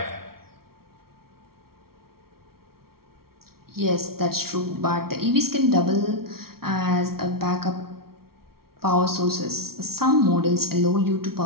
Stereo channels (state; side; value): late; left; 0.94 ms